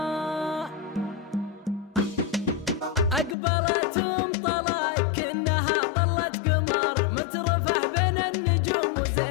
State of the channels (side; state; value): right; drops out; at 3.4 s